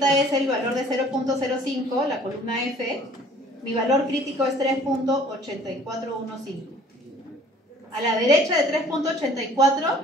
es el valor de 0.05, la columna F. Mi valor crítico es 3.8415. A la derecha de 3.84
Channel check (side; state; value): both; normal; correlation 0.53